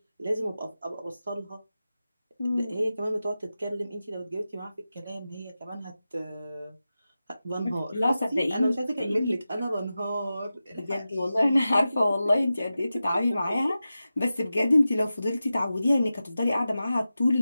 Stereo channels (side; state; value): both; inverted; correlation -0.93